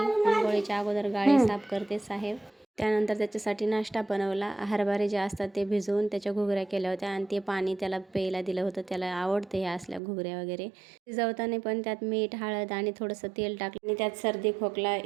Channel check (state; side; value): drops out; left; at 10.0 s